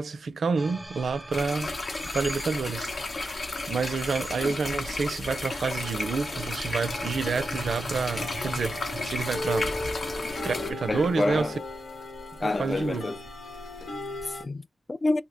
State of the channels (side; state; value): both; normal; correlation 0.88